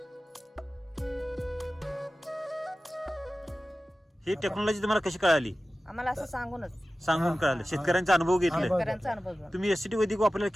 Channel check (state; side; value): normal; both; correlation 0.95